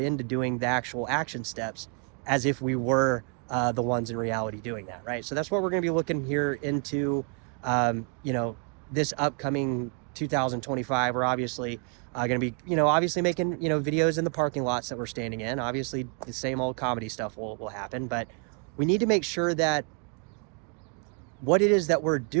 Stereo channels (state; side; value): quieter; left; 39.7 dB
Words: doing the actual action steps as if we were the ones in reality doing that, right? So that's what we're going to be looking here into, this upcoming 2025. We're obviously going to be, obviously making, videos in the parking lots that we're standing in. Obviously, the same old comedy stuff will happen, but we need to make sure that what it is that we're